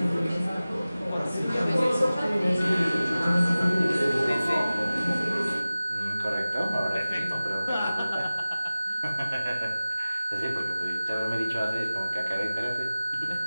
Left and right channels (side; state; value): both; inverted; correlation -0.97